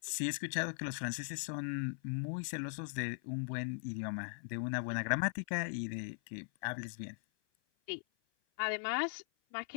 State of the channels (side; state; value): right; silent; 51 dB below the other